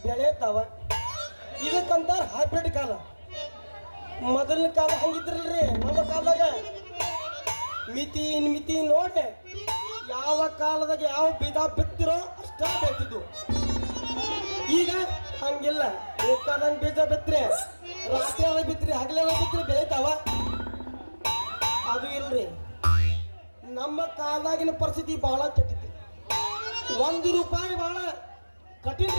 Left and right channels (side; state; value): both; inverted; correlation -1.00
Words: ಬೆಳೆತಾವ ಇದಕ್ಕಂತಾರ ಹೈಬ್ರಿಡ್ ಕಾಲ ಮೊದಲಿನ ಕಾಲ ಹಂಗಿದ್ರಲ್ರಿ ನಮ್ಮ ಕಾಲದಾಗ ಮಿತಿ ನೋಡಿ ಯಾವ ಕಾಲದಾಗ ಯಾವ ಬೀಜ ಬಿತ್ತಿರೋ ಅಷ್ಟ ಬೆಳ್ತಿದ್ವು ಈಗ ಹಂಗಿಲ್ಲ ಬೇಕಾದಂಗ್ ಬೀಜ ಬಿತ್ರಿ ರಾತ್ರಿ ಅದ ಬಿತ್ರಿ ಹಗಲೆಲ್ಲ ಬಿತ್ರಿ ಬೆಳಿತಾವ ಅದು ಇಲ್ರಿ ನಮ್ಮ ಕಾಲದಾಗಿನ ಪರಿಸ್ಥಿತಿ ಬಹಳ ಕೆಟ್ಟಿತ್ತು ₹1 ಬಹಳ